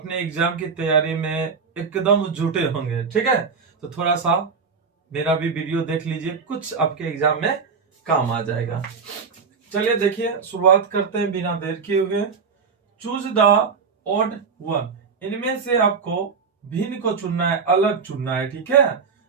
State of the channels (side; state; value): left; quieter; 5.4 dB